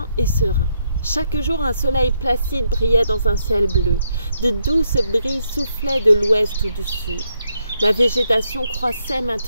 et serein. Chaque jour, un soleil placide brillait dans un ciel bleu. De douces brises soufflaient de l'ouest ou du sud. La végétation croissait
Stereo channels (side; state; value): both; inverted; correlation -0.77